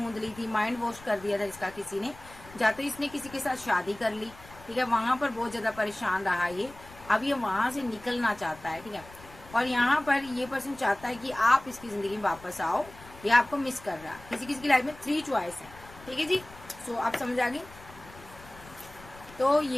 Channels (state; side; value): noise; left; rumble, 20 dB below the sound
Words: ली थी, माइंड वॉश कर दिया था इसका किसी ने, या तो इसने किसी के साथ शादी कर ली, ठीक है, वहां पर बहुत ज्यादा परेशान रहा ये, अब ये वहां से निकलना चाहता है, ठीक है। और यहाँ पर ये पर्सन चाहता है कि आप इसकी जिंदगी में वापस आओ, ये आपको मिस कर रहा है। किसी किसी की लाइफ में 3 चॉइस है, ठीक है जी। सो आप समझ आ गई। तो